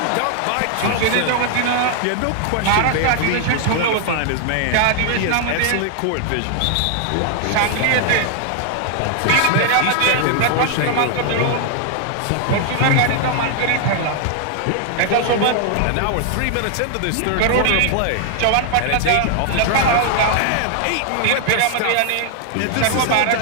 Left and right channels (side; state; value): both; different; correlation 0.00